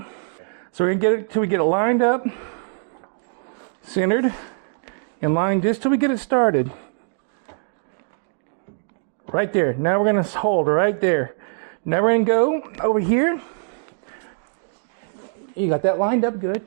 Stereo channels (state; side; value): silent; left; digital silence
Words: So we're going to get it till we get it lined up, centered, and lined just till we get it started. Right there. Now we're going to hold right there. Now we're going to go over here. You got that lined up good.